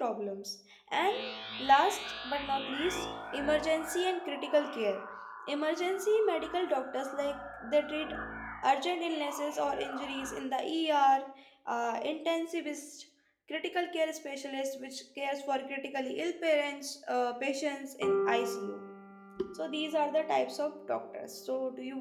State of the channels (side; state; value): both; identical; correlation 1.00